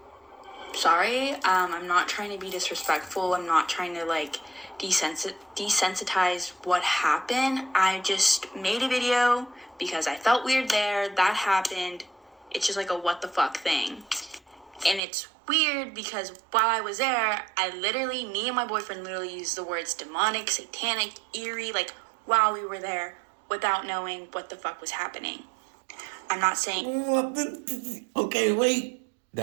sorry. I'm not trying to be disrespectful. I'm not trying to desensitize what happened. I just made a video because I felt weird there. That happened. It's just like a what the fuck thing. And it's weird because while I was there, me and my boyfriend literally used the words demonic, satanic, eerie, like while we were there without knowing what the fuck was happening. I'm not saying... Okay, wait.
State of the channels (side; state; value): left; drops out; at 15.0 s